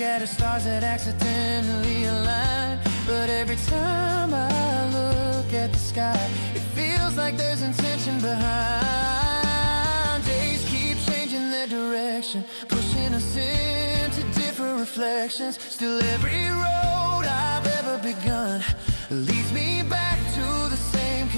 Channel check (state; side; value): inverted; both; correlation -1.00